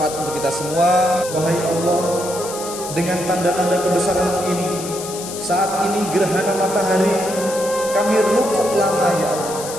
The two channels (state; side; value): noise; left; hiss, 10 dB below the sound